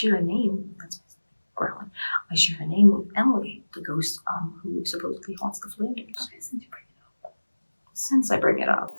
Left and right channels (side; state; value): both; inverted; correlation -1.00